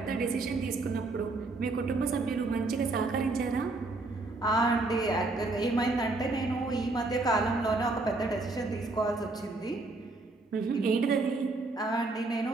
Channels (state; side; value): quieter; left; 3.3 dB